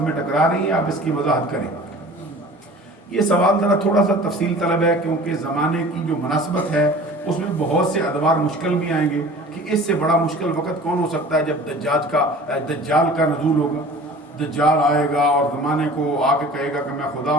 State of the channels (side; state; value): both; normal; correlation 0.43